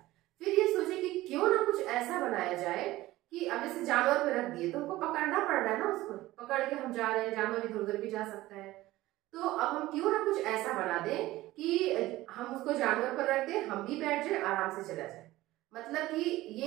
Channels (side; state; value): left; quieter; 17.2 dB